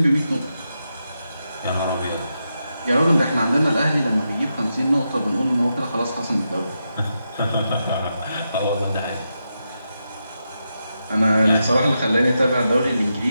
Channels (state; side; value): inverted; both; correlation -0.86